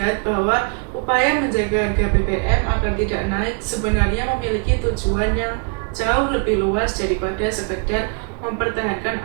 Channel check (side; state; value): left; quieter; 38.5 dB